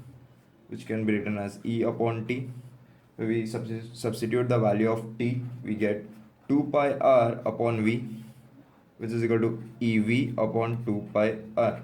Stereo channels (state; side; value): identical; both; correlation 1.00